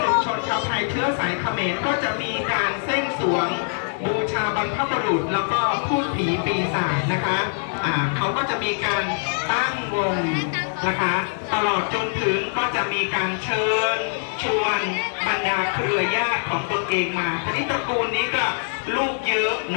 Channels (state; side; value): silent; right; digital silence